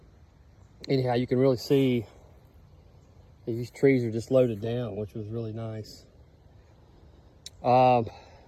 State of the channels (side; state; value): both; identical; correlation 1.00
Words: anyhow, you can really see these trees are just loaded down, which was really nice.